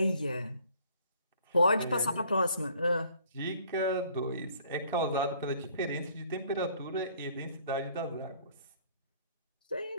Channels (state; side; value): inverted; both; correlation -0.58